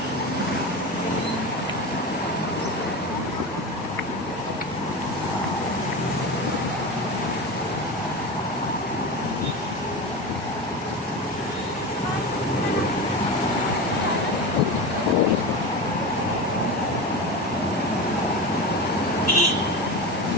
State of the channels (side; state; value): both; normal; correlation 0.24